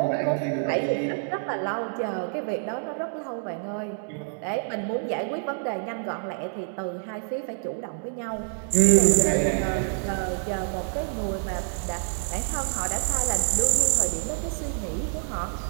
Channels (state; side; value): silent; left; digital silence